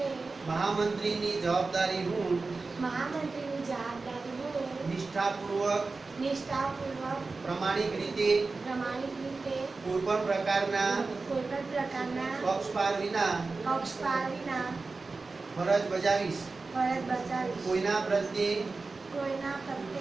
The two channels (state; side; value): quieter; left; 3.9 dB